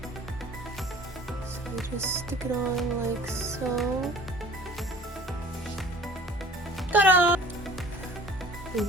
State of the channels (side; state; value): both; normal; correlation 0.48